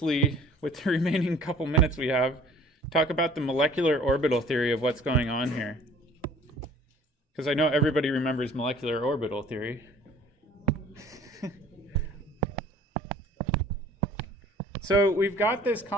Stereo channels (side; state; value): both; normal; correlation 0.52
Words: with the remaining couple minutes we have, talk about the molecular orbital theory of what's going on here. Because I know everybody remembers molecular orbital theory. So we've got this